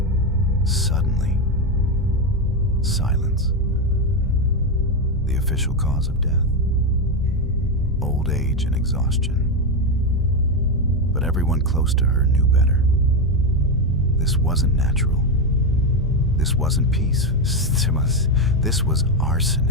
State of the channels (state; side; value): normal; both; correlation 0.09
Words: suddenly, silence. The official cause of death: old age and exhaustion. But everyone close to her knew better. This wasn't natural. This wasn't peace. This was